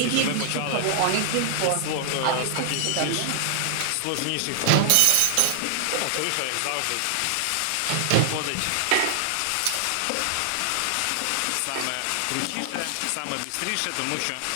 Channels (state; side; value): different; both; correlation 0.00